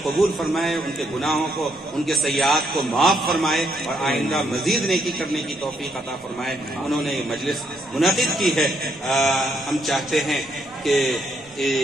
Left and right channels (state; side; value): normal; both; correlation 0.74